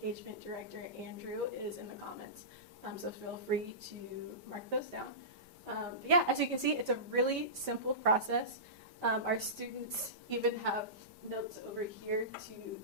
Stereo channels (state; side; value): late; left; 5.1 ms